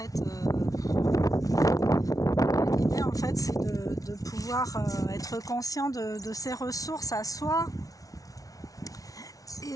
l'idée, en fait, c'est de pouvoir être conscient de ses ressources à soi.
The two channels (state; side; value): late; right; 0.18 ms